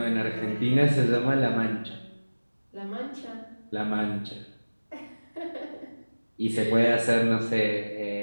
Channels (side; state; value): both; inverted; correlation -1.00